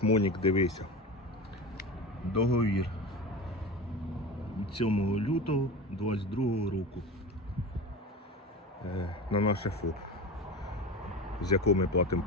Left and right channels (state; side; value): normal; both; correlation 0.29